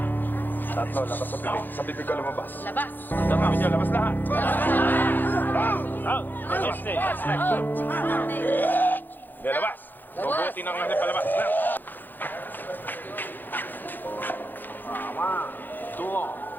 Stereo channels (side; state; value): right; late; 0.089 ms